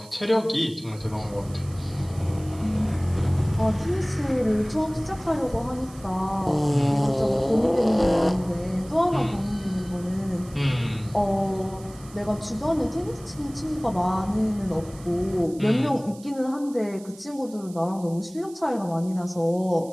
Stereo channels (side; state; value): right; noise; hiss, 22 dB below the sound